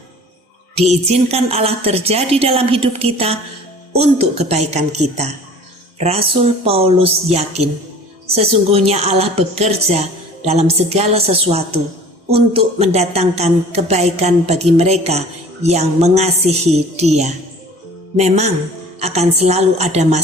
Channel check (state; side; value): normal; both; correlation 0.46